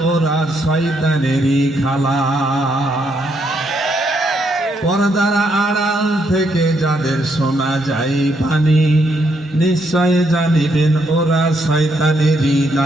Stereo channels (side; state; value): both; normal; correlation 0.75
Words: ওরা শয়তানেরই খালা। পর্দার আড়াল থেকে যাদের শোনা যায় বাণী, নিশ্চয় জানিবেন ওরা শয়তানেরই